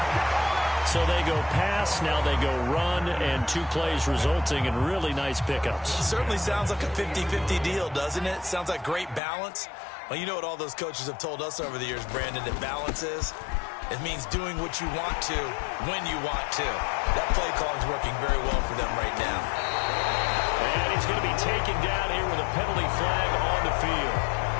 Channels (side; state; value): right; drops out; at 9.2 s